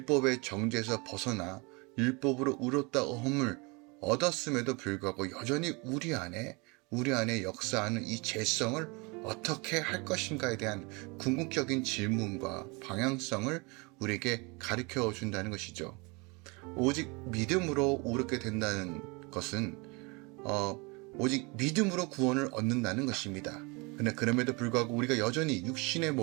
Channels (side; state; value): left; quieter; 28.3 dB